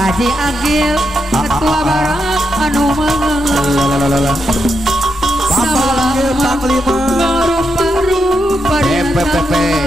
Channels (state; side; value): normal; both; correlation 0.83